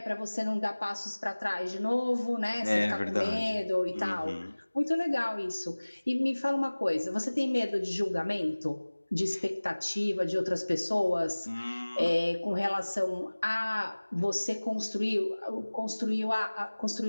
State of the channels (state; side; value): inverted; both; correlation -1.00